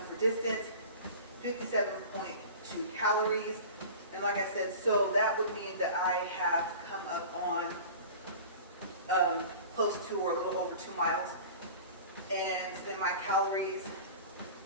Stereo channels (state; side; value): inverted; both; correlation -0.38